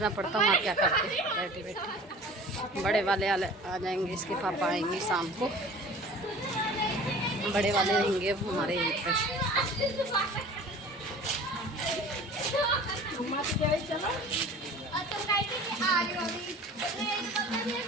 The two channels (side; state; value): both; normal; correlation 0.43